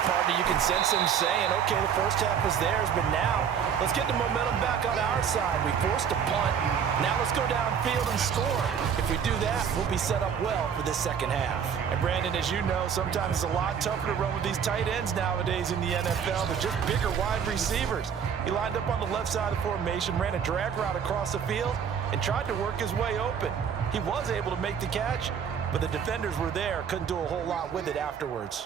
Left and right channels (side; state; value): left; quieter; 7.6 dB